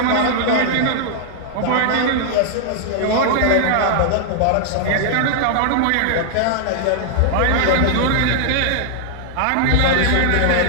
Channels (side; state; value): both; different; correlation 0.00